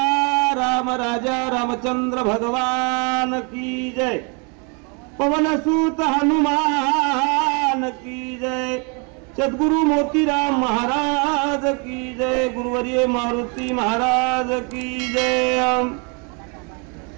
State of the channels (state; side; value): quieter; left; 34.0 dB